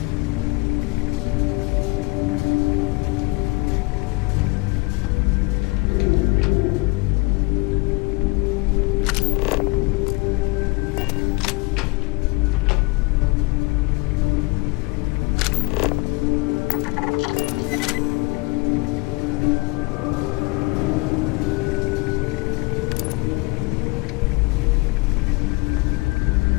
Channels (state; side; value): quieter; right; 26.4 dB